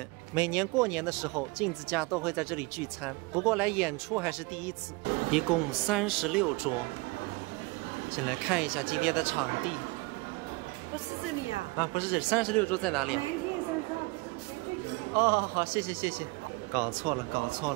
每年过年的时候，镜子家都会在这里聚餐，不过来演出还是第一次。 一共36桌，先来看一下今天的场地。不是这里呀？啊，不是这里，36桌在哪里？南天山上不是最前面。哦，好，谢谢谢谢。搞错了，搞错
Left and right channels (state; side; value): quieter; left; 24.9 dB